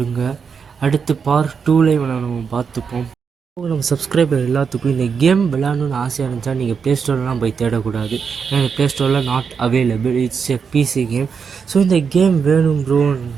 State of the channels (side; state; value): left; quieter; 6.1 dB